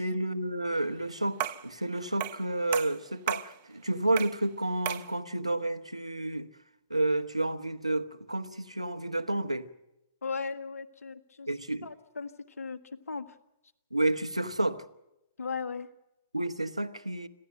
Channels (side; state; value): both; inverted; correlation -0.87